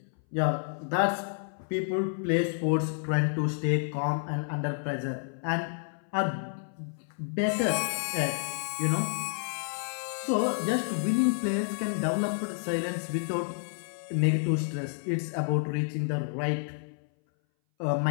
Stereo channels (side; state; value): right; silent; 58 dB below the other